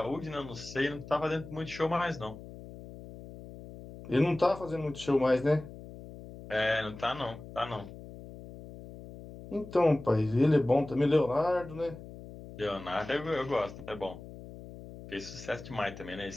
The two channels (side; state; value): left; noise; hum, 15 dB below the sound